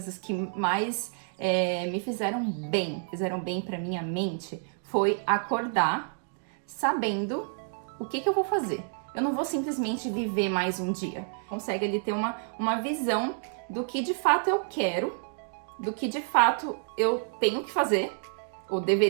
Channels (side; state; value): left; silent; digital silence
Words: que mais me fizeram bem pra minha mente, foi acordar sabendo o que eu vou fazer. Eu não vou simplesmente viver mais um dia. Consegue ali ter uma visão do que de fato eu quero, do que de fato eu tenho que fazer, ou